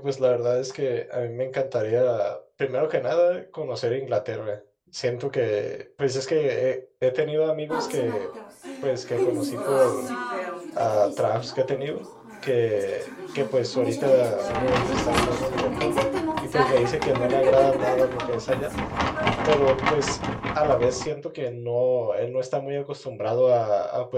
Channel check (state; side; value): identical; both; correlation 1.00